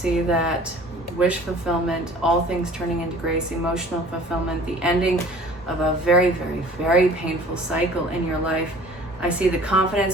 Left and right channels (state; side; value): normal; both; correlation 0.48